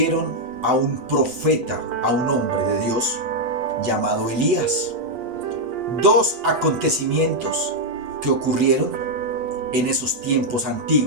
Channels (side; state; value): left; late; 8.1 ms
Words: a un profeta, a un hombre de Dios llamado Elías. Dos acontecimientos que ocurrieron en esos tiempos